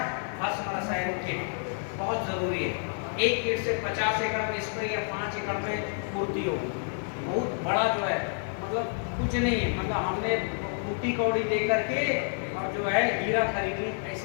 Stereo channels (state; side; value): silent; right; 59 dB below the other